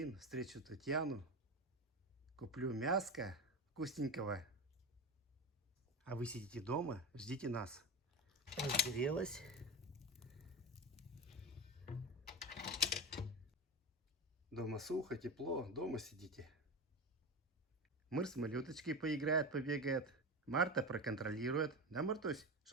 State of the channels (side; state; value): both; normal; correlation 0.23